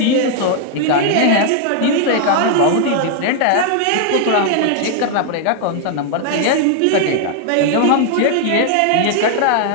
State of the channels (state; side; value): different; both; correlation 0.00